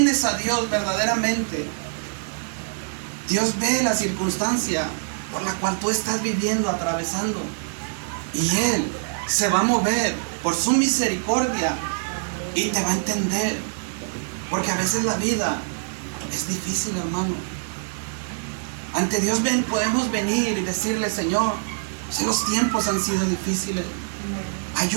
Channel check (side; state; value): left; silent; digital silence